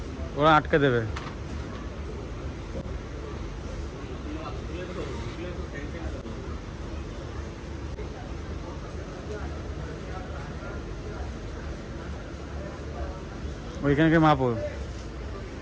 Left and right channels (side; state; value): both; identical; correlation 1.00